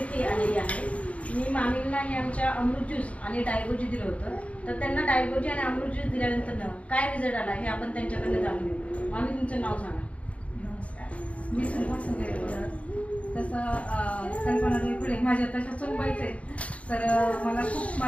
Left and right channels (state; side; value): late; right; 0.064 ms